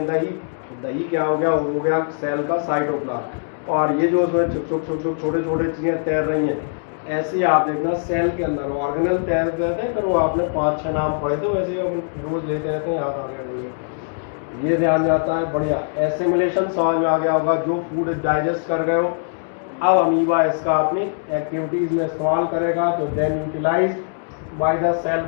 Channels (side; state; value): right; silent; digital silence